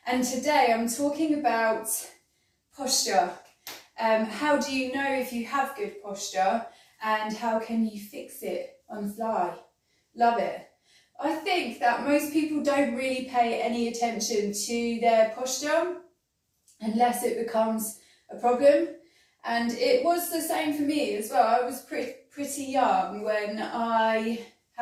And today I'm talking about posture. How do you know if you have good posture, and how can you fix it on the fly? Love it. I think that most people don't really pay any attention to their posture unless it becomes a problem. And it was the same for me as well. I was pretty young when I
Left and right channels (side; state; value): both; identical; correlation 1.00